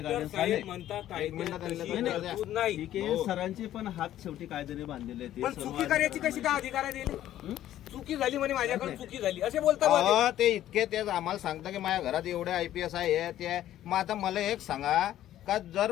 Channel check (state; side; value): quieter; right; 12.6 dB